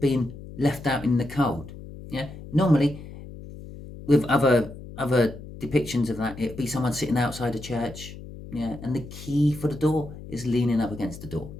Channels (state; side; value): noise; left; hum, 14 dB below the sound